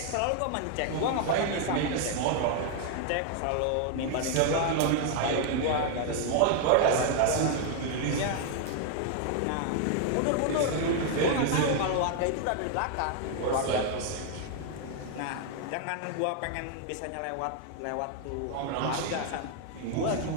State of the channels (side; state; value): both; different; correlation 0.00